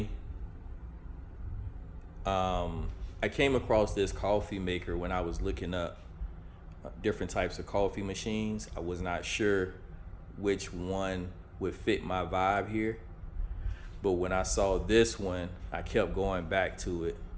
I came across this coffee maker when I was looking up different types of coffee machines. I was not sure which one would fit my vibe here, but when I saw this one, I kept going back to it.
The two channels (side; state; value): both; identical; correlation 1.00